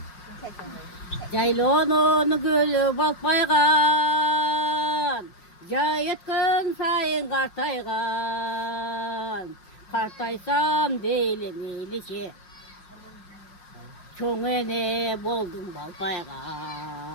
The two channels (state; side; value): late; right; 5.5 ms